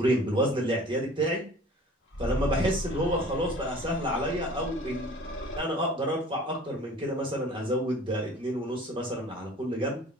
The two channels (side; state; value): both; normal; correlation 0.47